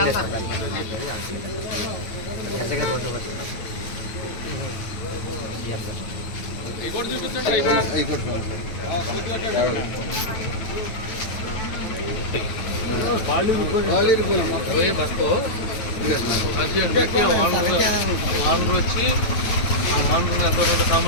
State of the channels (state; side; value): late; right; 9.3 ms